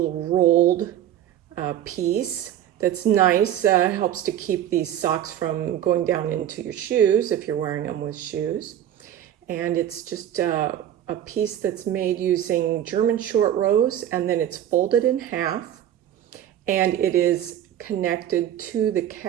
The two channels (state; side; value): quieter; left; 11.1 dB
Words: rolled piece that's nice, helps to keep these socks from going down into your shoes if you're wearing them with shoes. And it's just a piece that's made using German short rows, and then it's folded in half, and it is connected to the